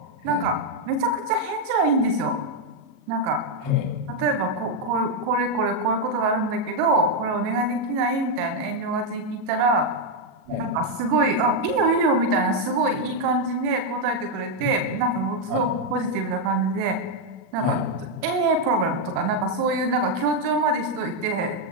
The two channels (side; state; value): left; late; 38 ms